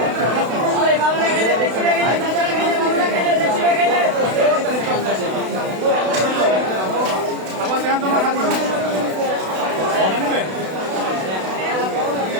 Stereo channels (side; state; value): left; late; 32 ms